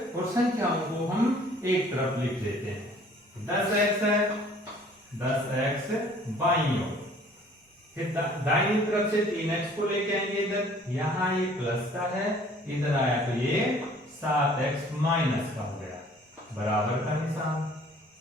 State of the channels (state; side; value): normal; both; correlation 0.54